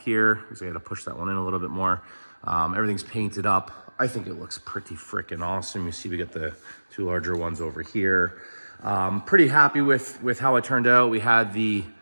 So I got to push that one in a little bit more. Everything's painted up. I think it looks pretty freaking awesome. You see we got the 2 larger ones over here. Pretty happy with how it turned out. We had the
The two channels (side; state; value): both; inverted; correlation -1.00